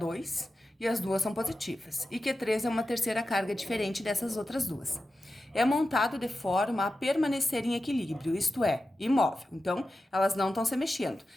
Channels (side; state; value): both; normal; correlation 0.92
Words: e as duas são positivas, e Q3 é uma terceira carga diferente dessas outras duas. É montado de forma a permanecer em equilíbrio, isto é, imóvel. Então, elas não estão se mexendo.